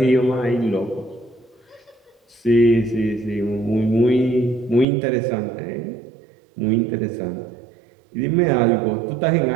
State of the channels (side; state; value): left; drops out; at 4.9 s